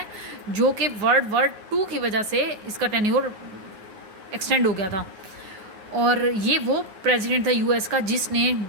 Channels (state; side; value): late; left; 9.5 ms